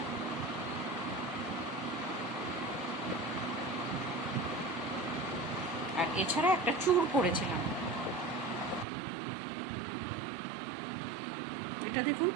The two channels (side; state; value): left; drops out; at 8.8 s